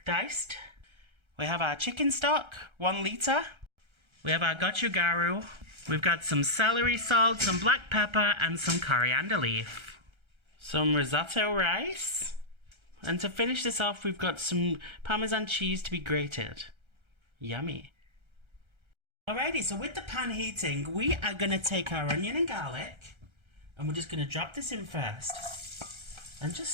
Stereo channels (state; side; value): late; left; 1.3 ms